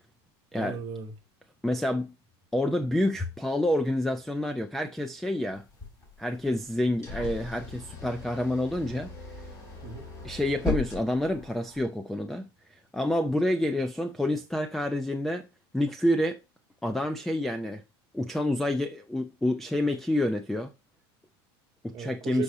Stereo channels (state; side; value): normal; both; correlation 0.86